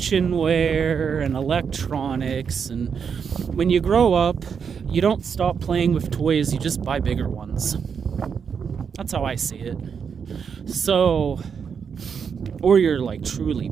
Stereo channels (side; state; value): left; quieter; 6.6 dB